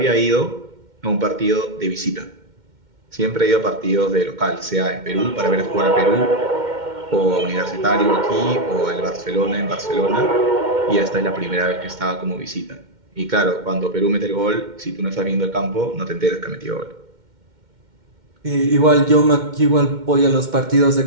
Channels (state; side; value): late; left; 2.1 ms